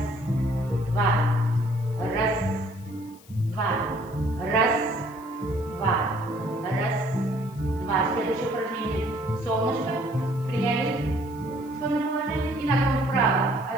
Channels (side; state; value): left; noise; hiss, 25 dB below the sound